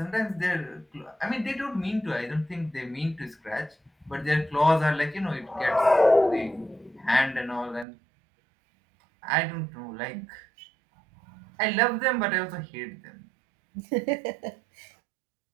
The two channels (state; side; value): drops out; left; at 7.9 s